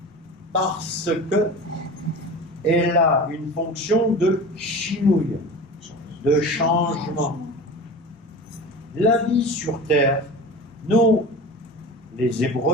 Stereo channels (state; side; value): normal; both; correlation 0.33